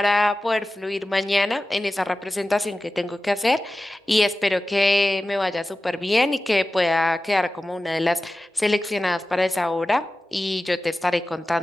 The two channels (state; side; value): normal; both; correlation 0.95